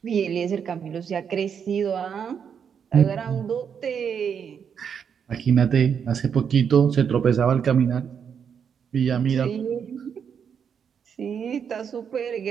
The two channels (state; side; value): quieter; left; 7.4 dB